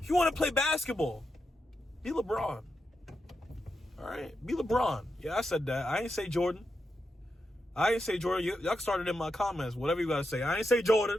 you want to play basketball, be LeBron. All right? Be LeBron. Yeah, I said that. I ain't say Jordan. Y'all started in my comments, whatever you got to say. I ain't say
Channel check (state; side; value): normal; both; correlation 0.86